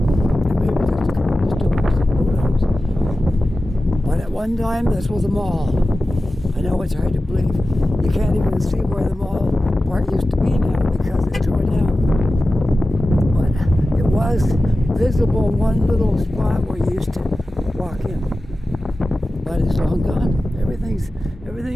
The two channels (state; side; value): normal; both; correlation 0.95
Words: And maybe just a couple of stores. Who knows? one time this was a mall. I know it's hard to believe. You can't even see where the mall part used to be now because it's torn down. But it was visible one little spot where you used to walk in. But it's long gone. Everything's